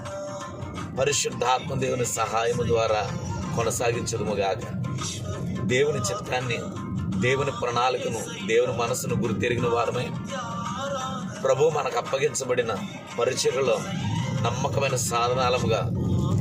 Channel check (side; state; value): both; identical; correlation 1.00